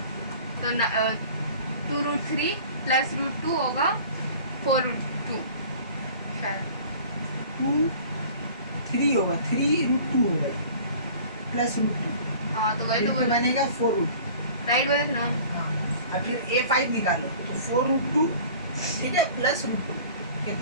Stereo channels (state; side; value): inverted; both; correlation -0.45